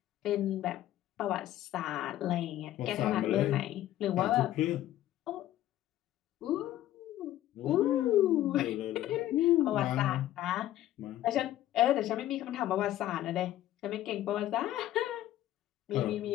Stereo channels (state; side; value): quieter; right; 13.5 dB